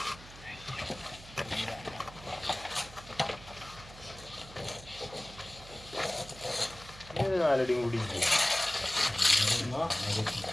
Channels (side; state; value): right; noise; hum, 18 dB below the sound